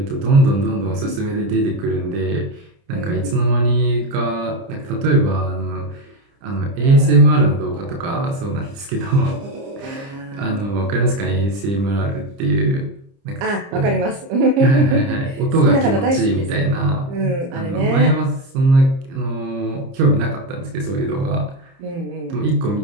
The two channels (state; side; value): late; left; 30 ms